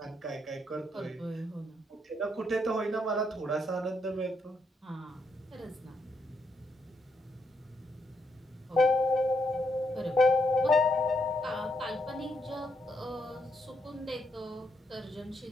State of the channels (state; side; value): normal; both; correlation 0.77